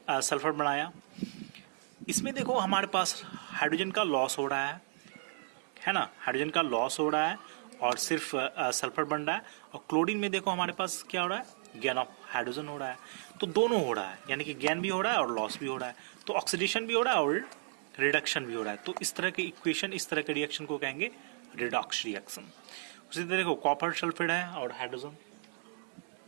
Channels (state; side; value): silent; left; digital silence